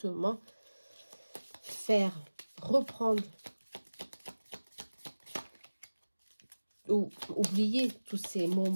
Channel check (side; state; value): both; inverted; correlation -1.00